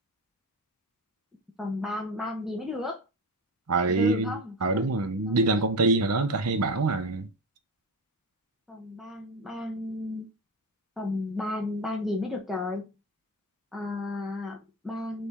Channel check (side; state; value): both; normal; correlation 0.20